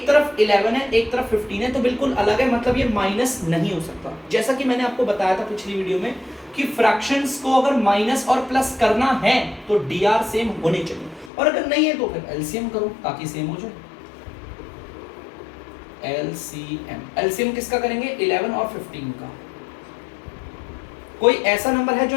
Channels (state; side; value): drops out; right; at 11.3 s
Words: तरफ 11 है एक तरफ 15 है, तो बिल्कुल अलग है, मतलब ये माइनस नहीं हो सकता। जैसा कि मैंने आपको बताया था पिछली वीडियो में कि फ्रैक्शंस को अगर माइनस और प्लस करना है तो dr सेम होने चाहिए, और अगर नहीं है तो फिर एलसीएम करो ताकि सेम हो जाए। एलसीएम किसका करेंगे? 11 और 15 का। कोई ऐसा नंबर है जो